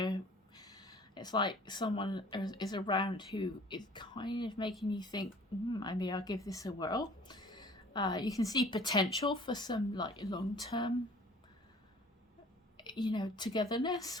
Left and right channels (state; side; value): normal; both; correlation 0.50